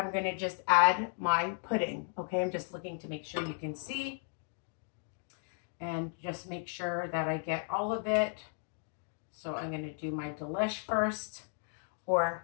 going to just add my pudding. Okay, I'm just looking to make sure you can see and just make sure that I get all of it. So I'm going to do my delish first,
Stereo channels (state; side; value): silent; right; 55 dB below the other